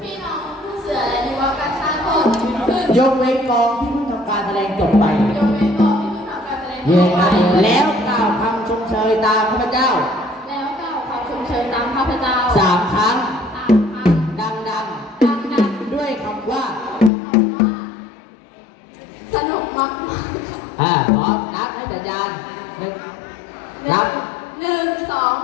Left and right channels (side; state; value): right; drops out; at 17.1 s